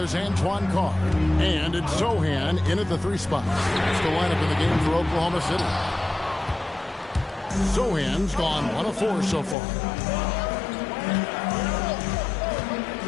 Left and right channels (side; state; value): right; drops out; at 9.6 s